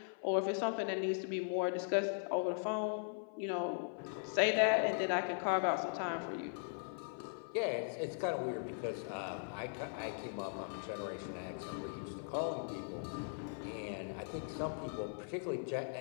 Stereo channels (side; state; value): right; silent; 52 dB below the other